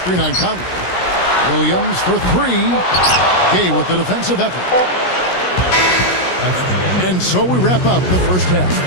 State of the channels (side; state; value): right; late; 16 ms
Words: on Conley. Williams for 3. Gay with the defensive effort. And so we wrap up the first half.